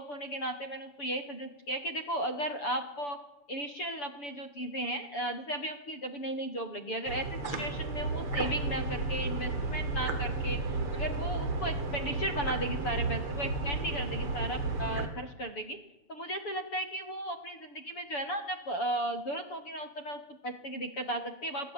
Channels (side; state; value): right; late; 6.9 ms